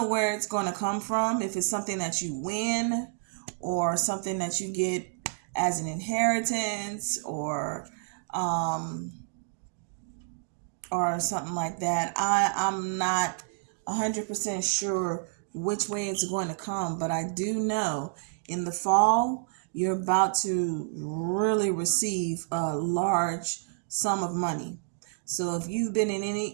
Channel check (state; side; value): silent; left; digital silence